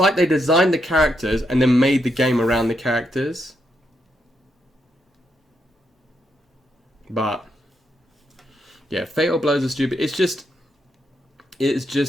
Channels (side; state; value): both; normal; correlation 0.80